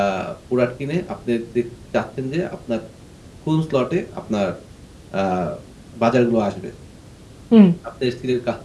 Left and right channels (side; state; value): both; identical; correlation 1.00